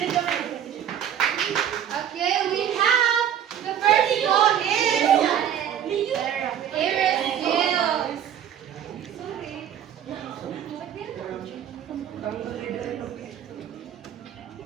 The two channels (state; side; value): quieter; left; 9.7 dB